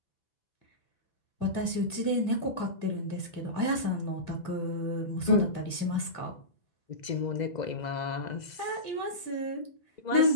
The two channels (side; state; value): right; late; 2.0 ms